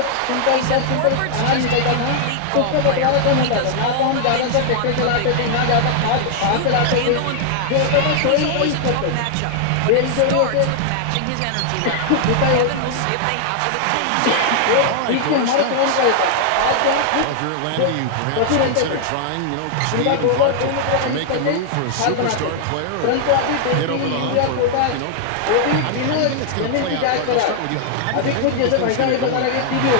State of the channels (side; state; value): both; different; correlation -0.01